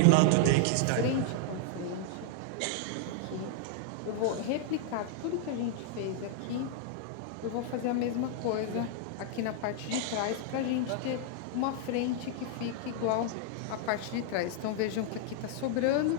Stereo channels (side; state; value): both; different; correlation -0.01